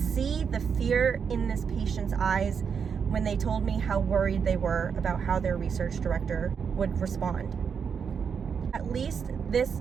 the fear in this patient's eyes when they told me how worried they were about how their research director would respond. At least this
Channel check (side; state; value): left; quieter; 6.6 dB